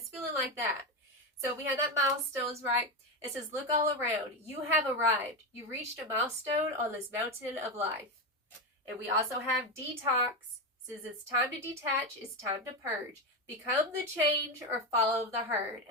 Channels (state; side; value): normal; both; correlation 0.14